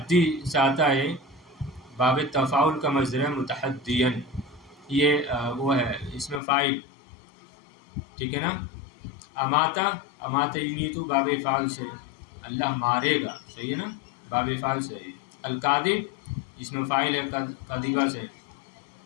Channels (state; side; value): drops out; right; at 6.4 s